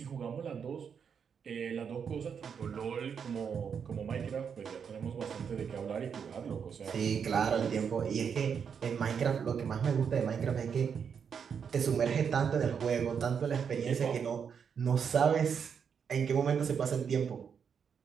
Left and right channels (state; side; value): quieter; left; 7.0 dB